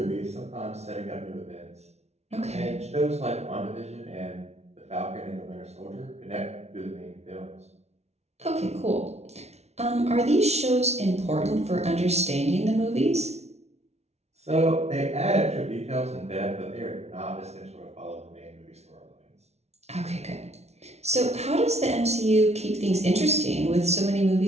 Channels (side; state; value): left; late; 0.31 ms